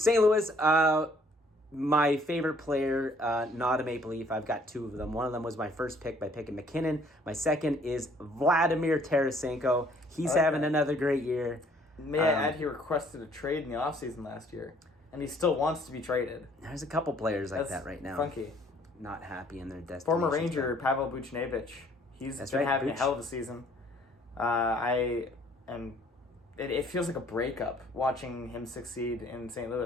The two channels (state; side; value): normal; both; correlation 0.60